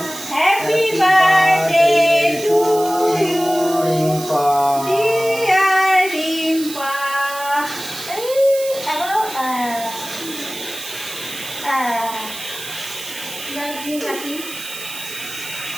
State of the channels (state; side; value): noise; right; hiss, 11 dB below the sound